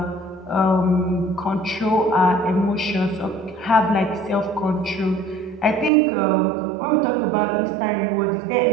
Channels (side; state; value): left; drops out; at 5.9 s